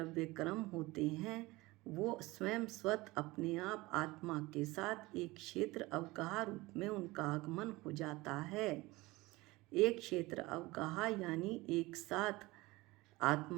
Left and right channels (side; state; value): left; quieter; 21.0 dB